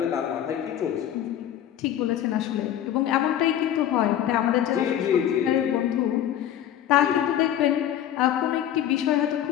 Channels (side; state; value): right; quieter; 11.0 dB